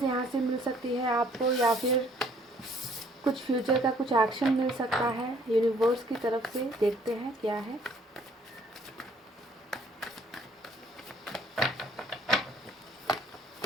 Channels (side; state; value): both; normal; correlation 0.60